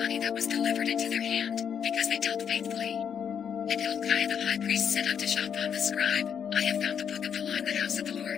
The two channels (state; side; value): quieter; right; 7.8 dB